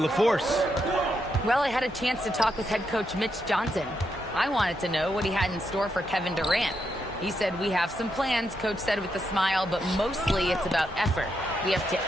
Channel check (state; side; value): normal; both; correlation 0.81